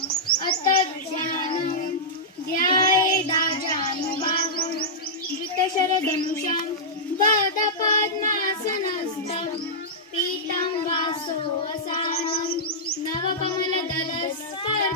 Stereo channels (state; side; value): normal; both; correlation -0.11